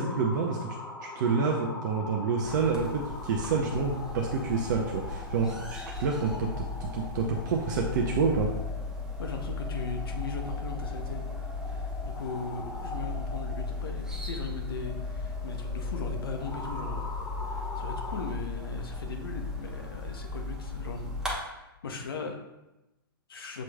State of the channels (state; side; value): normal; both; correlation -0.15